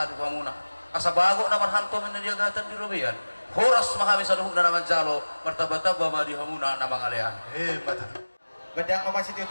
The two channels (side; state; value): both; inverted; correlation -1.00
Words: di pamuna. Asa bago naman hanto men diagatan di Robian. Horas mahami sa luhug na naman jalo, martaba-taba ma di hamuna namang alean. Mata. Badang mamang si